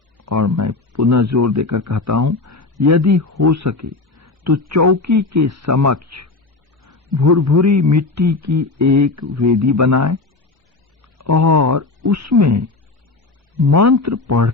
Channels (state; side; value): quieter; right; 3.5 dB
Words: और मैं पुनः जोर देकर कहता हूं, यदि हो सके तो चौकी के समक्ष भुरभुरी मिट्टी की एक वेदी बनाएं और उसमें मंत्र